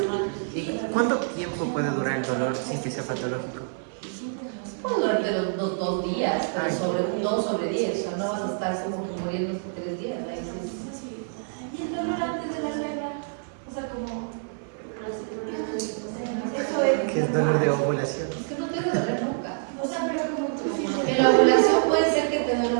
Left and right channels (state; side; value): silent; left; 55 dB below the other